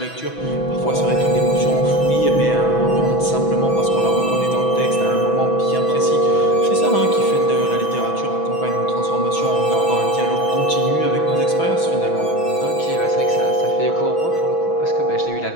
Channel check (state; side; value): late; right; 6.1 ms